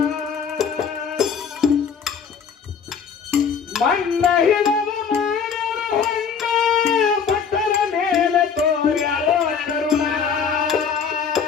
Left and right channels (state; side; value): quieter; right; 6.6 dB